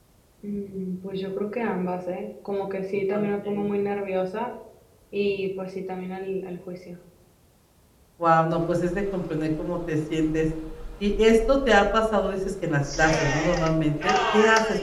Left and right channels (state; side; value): identical; both; correlation 1.00